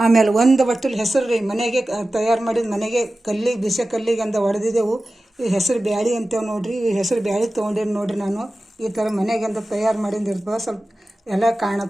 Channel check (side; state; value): both; normal; correlation 0.95